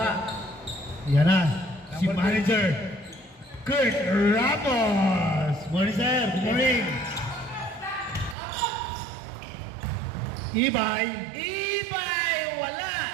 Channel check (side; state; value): left; drops out; at 8.3 s